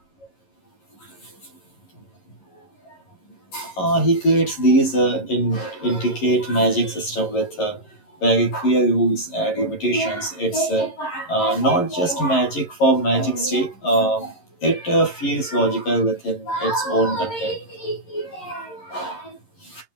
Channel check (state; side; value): late; right; 11 ms